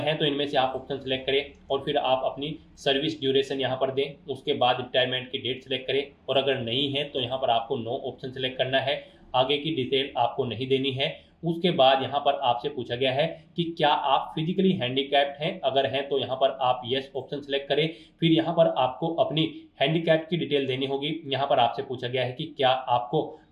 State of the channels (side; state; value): both; identical; correlation 1.00